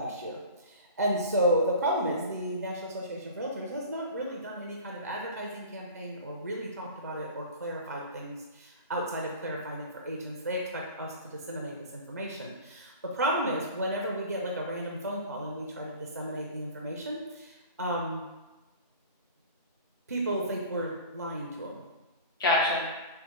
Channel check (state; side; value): inverted; both; correlation -0.38